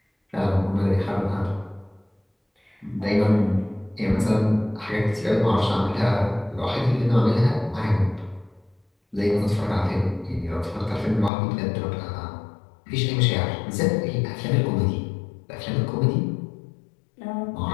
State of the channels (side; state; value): right; drops out; at 11.3 s